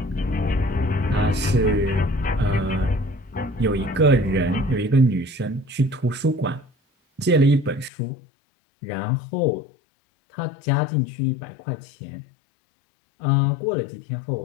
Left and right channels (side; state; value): right; drops out; at 7.9 s